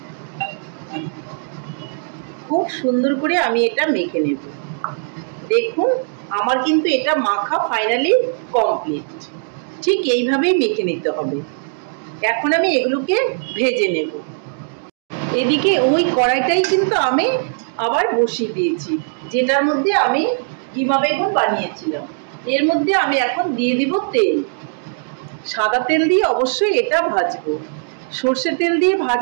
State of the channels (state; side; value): silent; left; digital silence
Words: খুব সুন্দর করে আমি এটা মেখে নেব। দেখুন আমার কিন্তু এটা মাখা ফাইনালি কমপ্লিট। ঠিক এইভাবেই মেখে নিতে হবে। এখন আমি এগুলোকে ভেজে নেব। এদিকে ওই কড়াইটাই কিন্তু আমি আবার বসিয়ে দিয়েছি, যেটার মধ্যে আমি কিমা বেগুন বানিয়েছিলাম। এর মধ্যে আমি এখন দিয়ে দিব তেল। সাদা তেল দিয়ে অবশ্যই এটা ভাজবো। সর্ষের তেল দিয়ে